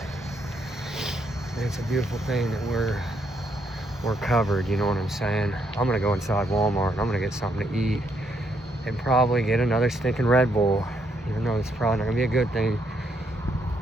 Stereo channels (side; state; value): both; normal; correlation 0.75